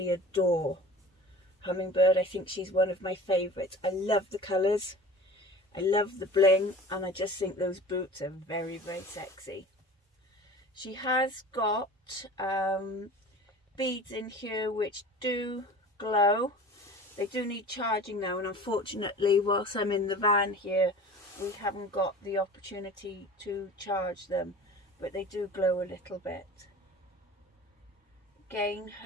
adore Hummingbird. I think she's one of my favorites. I love the colors, I love the bling, and I just think those boots are very, very sexy. She has got beads in here which do glow. They do need charging now, and unfortunately whilst I'm in the van here we haven't got the opportunity to charge them, but they do glow a little bit. Again,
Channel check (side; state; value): both; normal; correlation 0.40